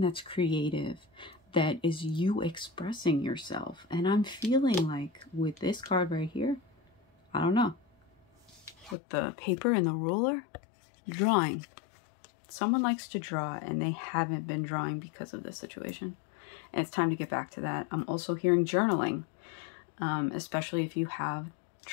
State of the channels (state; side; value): drops out; right; at 9.0 s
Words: creative, that is you expressing yourself. And I'm feeling like with this card right here, I don't know, with the paper and the ruler, drawing. Someone likes to draw and they haven't been drawing because of this situation. And it's time to get back to that. I'm also hearing journaling, especially if you have